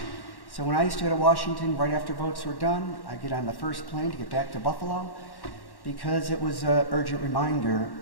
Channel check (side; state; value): right; late; 1.1 ms